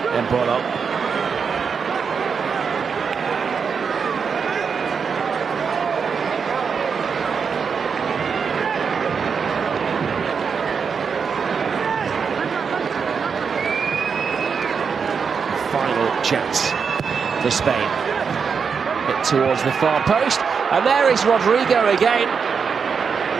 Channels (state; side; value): quieter; left; 6.0 dB